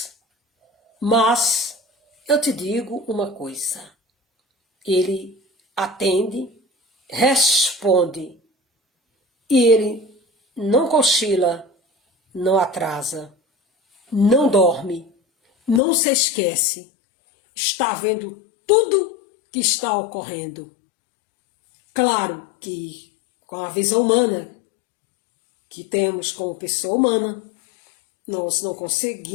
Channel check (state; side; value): drops out; right; at 15.8 s